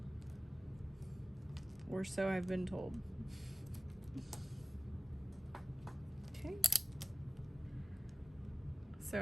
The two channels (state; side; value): normal; both; correlation 0.96